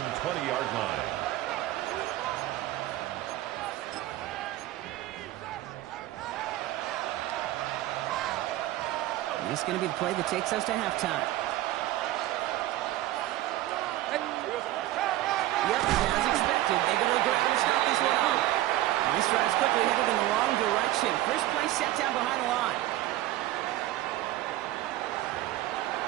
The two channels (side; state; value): left; quieter; 15.4 dB